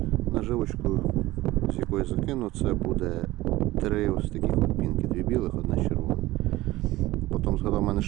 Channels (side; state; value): left; quieter; 17.8 dB